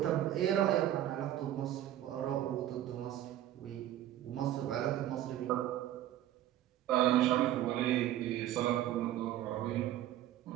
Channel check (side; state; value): left; quieter; 12.7 dB